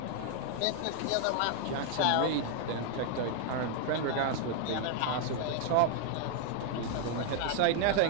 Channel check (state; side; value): different; both; correlation 0.00